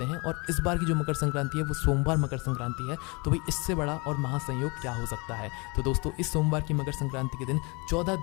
हैं। और इस बार की जो मकर संक्रांति है वो सोमवार मकर संक्रांति है, तो भाई इससे बड़ा और महासंयोग क्या हो सकता है। तो दोस्तों, इस सोमवार की मकर संक्रांति के दिन 14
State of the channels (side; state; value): right; quieter; 28.8 dB